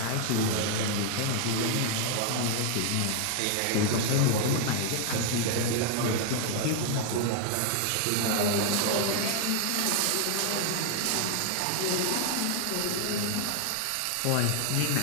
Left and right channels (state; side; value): different; both; correlation 0.00